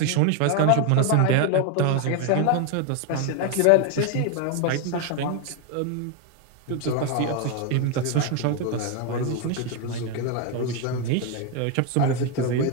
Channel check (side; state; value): both; different; correlation 0.01